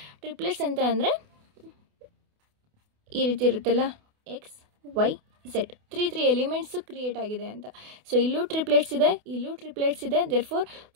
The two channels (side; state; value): left; late; 28 ms